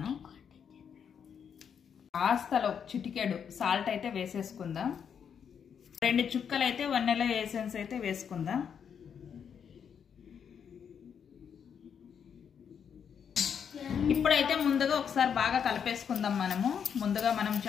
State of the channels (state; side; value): quieter; right; 7.5 dB